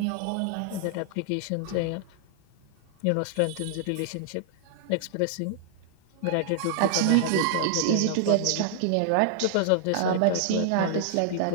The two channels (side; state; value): both; different; correlation -0.01